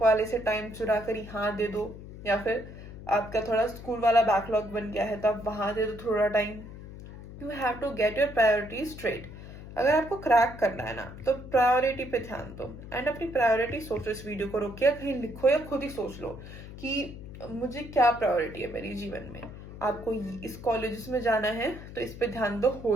वाले से टाइम चुरा कर यहाँ दे दो, या फिर आपका थोड़ा स्कूल वाला बैकलॉग बन गया है तो आप वहां दे दो थोड़ा time. You have to get your priority straight. अगर आपको क्रैक करना है ना तो प्रायोरिटी पे ध्यान दो, एंड अपनी प्रायोरिटी सोचो। इस वीडियो को रोक के कहीं लिखो या खुद ही सोच लो कि मुझे क्या प्रायोरिटी है मेरे जीवन में। आपको इस कॉलेज में जाना है तो इस पे ध्यान दो, हो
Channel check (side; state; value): left; noise; hum, 13 dB below the sound